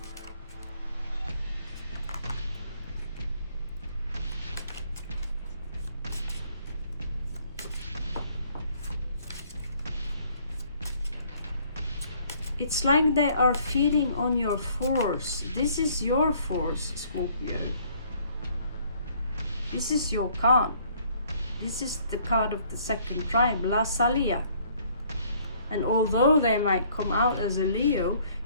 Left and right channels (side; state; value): both; inverted; correlation -0.61